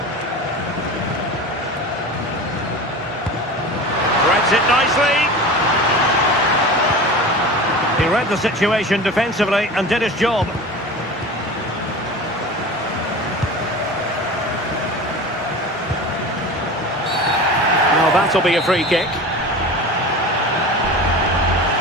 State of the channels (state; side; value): normal; both; correlation 0.33